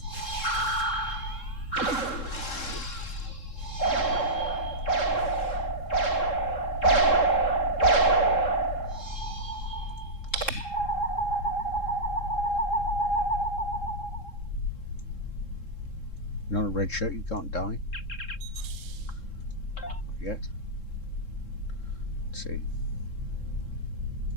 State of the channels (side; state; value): right; late; 3.7 ms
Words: You're not a red shirt, you can't die. Not yet. Let's see.